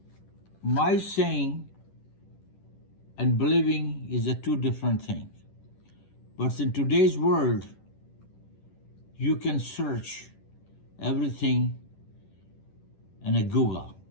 my saying and believing is a two different things. But in today's world, you can search everything in a Google.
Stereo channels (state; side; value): late; right; 10 ms